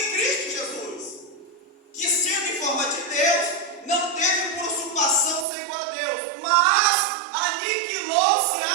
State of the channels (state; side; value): drops out; left; at 5.5 s